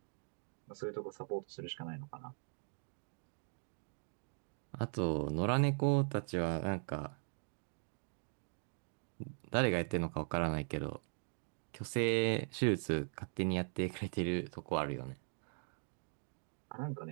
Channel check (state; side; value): silent; left; 51 dB below the other